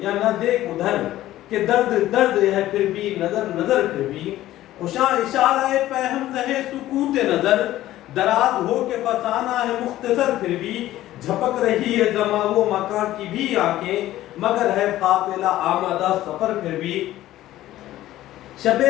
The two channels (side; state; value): right; quieter; 14.6 dB